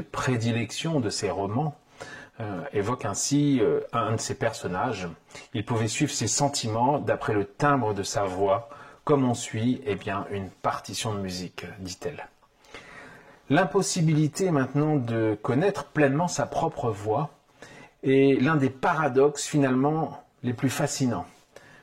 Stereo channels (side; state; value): both; identical; correlation 1.00